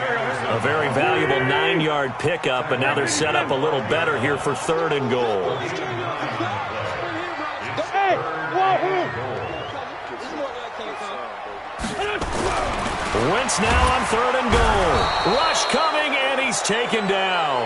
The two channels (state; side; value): identical; both; correlation 1.00